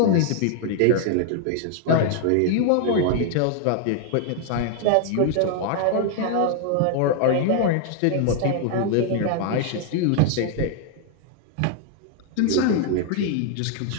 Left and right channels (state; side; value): different; both; correlation 0.00